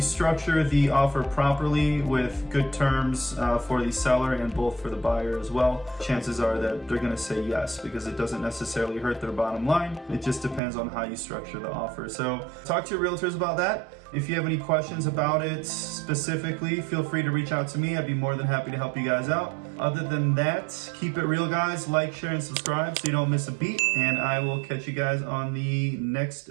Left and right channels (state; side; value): drops out; left; at 10.6 s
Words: structure the offer properly with good terms for the seller and both for the buyer as well, chances are that they're going to say yes, because it doesn't necessarily hurt their bottom line. It just depends on how you structure the offer. So talk to your realtors about that. If you have any questions about it specifically, feel free to reach out to me. I'd be more than happy to help you guys out. Other than that, keep it real, guys. Like, share, and subscribe so you don't miss a beat. And I will catch you guys on the next